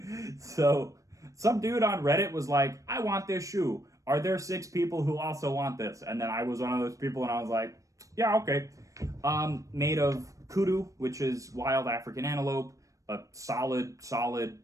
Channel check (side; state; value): left; late; 0.16 ms